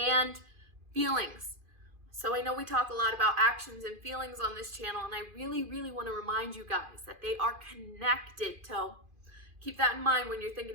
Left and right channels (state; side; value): late; left; 2.5 ms